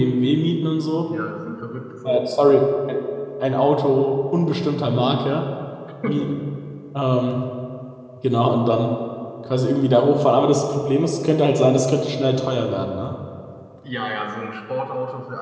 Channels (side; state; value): both; identical; correlation 1.00